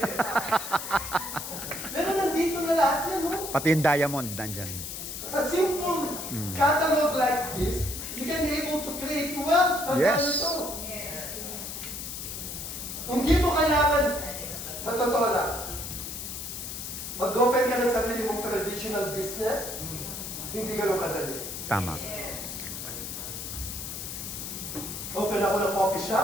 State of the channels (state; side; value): noise; left; hiss, 7 dB below the sound